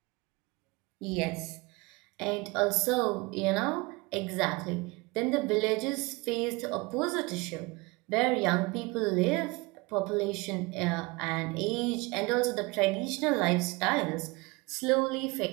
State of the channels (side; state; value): left; quieter; 25.0 dB